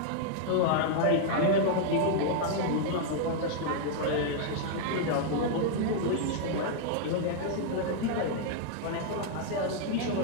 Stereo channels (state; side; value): different; both; correlation -0.01